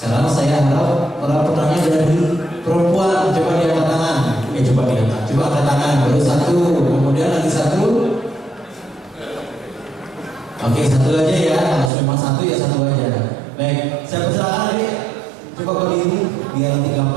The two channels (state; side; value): drops out; left; at 11.9 s